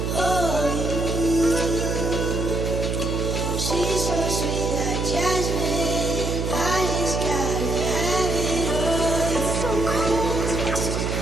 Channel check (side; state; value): right; noise; hum, 1 dB below the sound